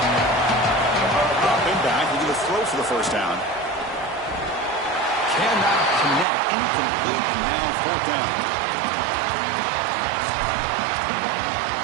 Dropping back, we're going to throw for the first down. Cannot connect, incomplete, and now fourth down.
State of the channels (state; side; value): drops out; left; at 6.2 s